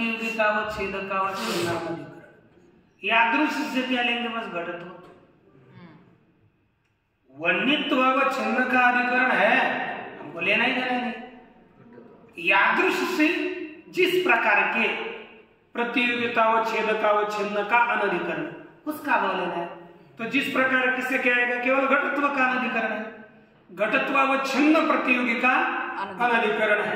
अधिकरण। यादृश से क्या लेंगे? बस घटत्व। वन्यत्वावच्छिन्न का अधिकरण है, हमको लेना ही देना नहीं। यादृश से जिस प्रकार के प्रतियोगितावच्छेदकावच्छिन्न का अनधिकरण, उसका भाव लेना है। तो जिस प्रकार किससे क्या आएगा? केवल घटत्व का अनधिकरण है, घटत्वावच्छिन्न प्रतियोगी का अनधिकरण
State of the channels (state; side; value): identical; both; correlation 1.00